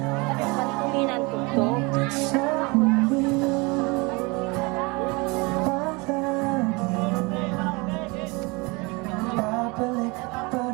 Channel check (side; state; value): left; quieter; 27.0 dB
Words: Kuminan ko to. sa mundo babalik pa